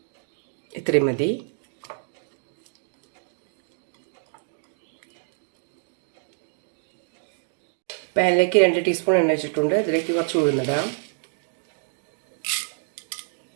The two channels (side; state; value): left; silent; 60 dB below the other